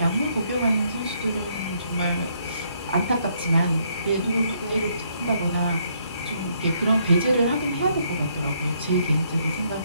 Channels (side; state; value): both; inverted; correlation -0.71